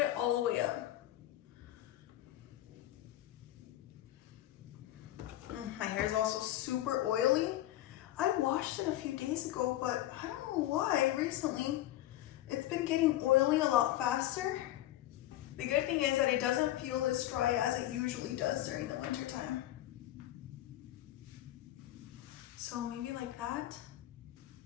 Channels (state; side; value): quieter; right; 14.5 dB